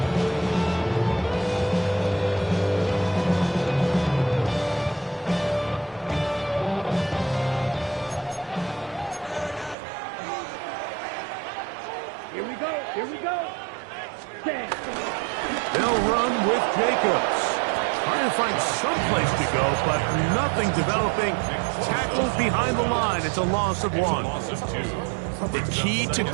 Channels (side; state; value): left; drops out; at 9.8 s